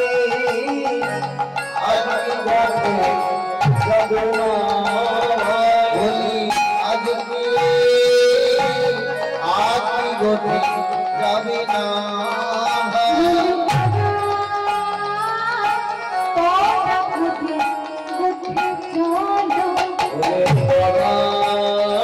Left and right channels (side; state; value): both; identical; correlation 1.00